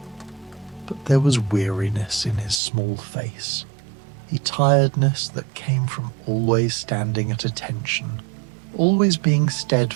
but there was weariness in his small face, a tiredness that came from always standing at attention, always being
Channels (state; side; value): drops out; left; at 2.6 s